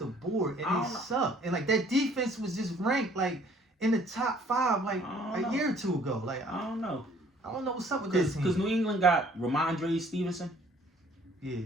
board and they suck. And like that defense was just ranked like in the top 5 like a year or two ago. Like, I don't know. I don't know what's up with this team. Because New England got Ramondre Stevenson. Yeah,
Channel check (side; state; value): both; normal; correlation 0.58